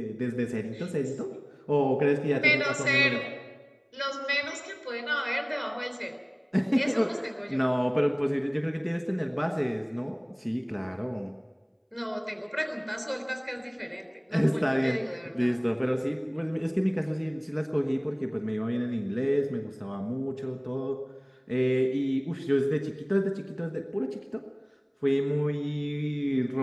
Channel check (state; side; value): identical; both; correlation 1.00